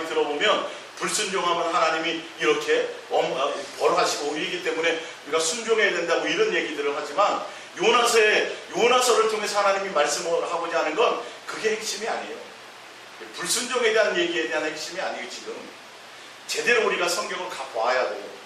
들어보면 불순종하면 하나님이 이렇게 벌하시고 이기 때문에 우리가 순종해야 된다고 이런 얘기들을 하지만, 요나서를 통해서 하나님이 말씀을 하고자 하는 건 그게 핵심이 아니에요. 불순종에 대한 얘기에 대한 핵심이 아니에요. 지금 제대로 우리가 성경을 봐야 돼요.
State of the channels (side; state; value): both; identical; correlation 1.00